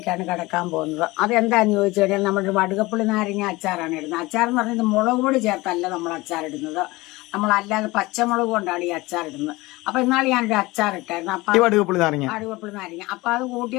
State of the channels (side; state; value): right; quieter; 21.2 dB